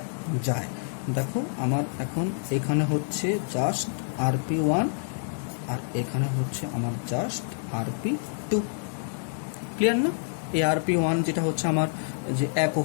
যায়। দেখো আমার এখন এখানে হচ্ছে জাস্ট RP1 আর এখানে হচ্ছে আমার জাস্ট RP2। ক্লিয়ার না? এই RP1 যেটা হচ্ছে আমার যে 1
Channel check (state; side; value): silent; right; 60 dB below the other